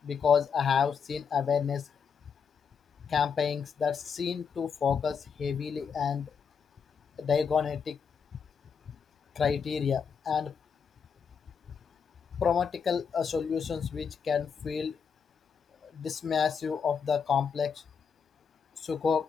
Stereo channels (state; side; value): quieter; right; 6.4 dB